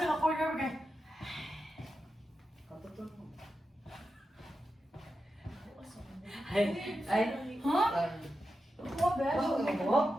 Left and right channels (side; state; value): both; normal; correlation 0.89